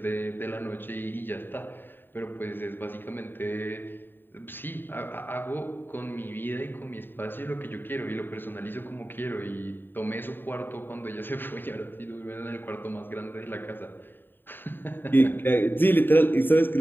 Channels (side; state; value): right; late; 0.095 ms